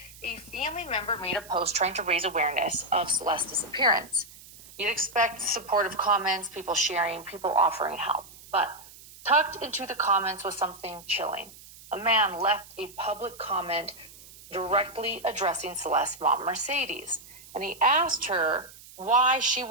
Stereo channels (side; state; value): right; noise; hiss, 20 dB below the sound